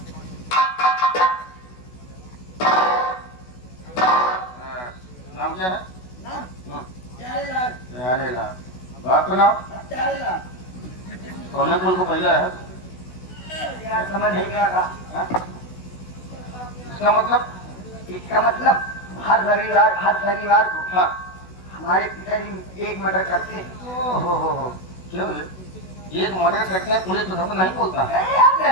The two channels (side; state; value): right; late; 16 ms